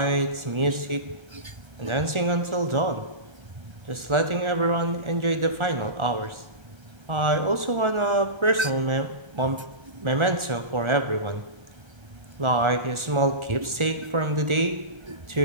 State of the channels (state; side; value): late; left; 1.4 ms